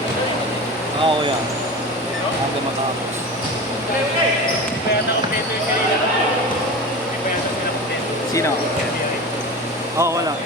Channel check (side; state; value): both; normal; correlation 0.30